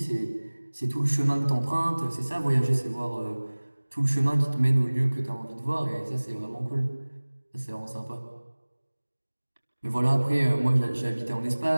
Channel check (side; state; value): both; inverted; correlation -1.00